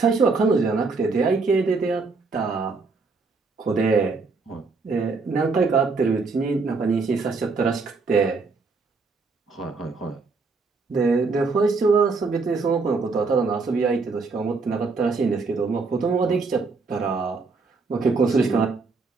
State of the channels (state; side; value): quieter; left; 4.2 dB